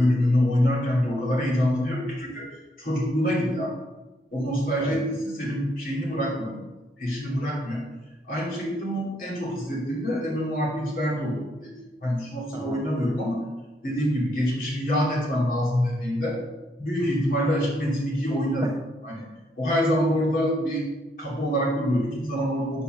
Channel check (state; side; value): normal; both; correlation 0.74